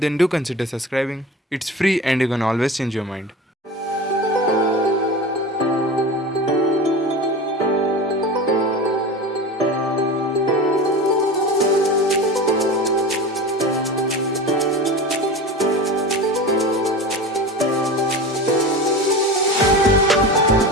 do consider subscribing. It's free and you can always change your mind.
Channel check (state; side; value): normal; both; correlation 0.31